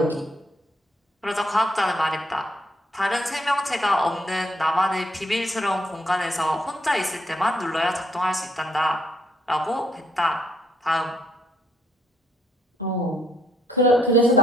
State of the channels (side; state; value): both; normal; correlation 0.71